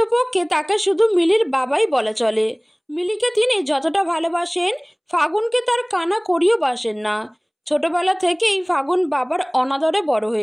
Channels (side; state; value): both; identical; correlation 1.00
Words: তাকে শুধু মিলির বাবাই বলা চলে। মিলিকে তিনি যতটা ভালোবাসেন ফাগুনকে তার কানা করিও বাসেন না। ছোটবেলা থেকেই ফাগুন বাবার অনাদরে বড়